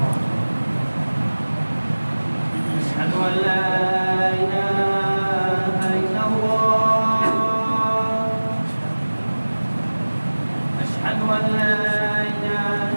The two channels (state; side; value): inverted; both; correlation -1.00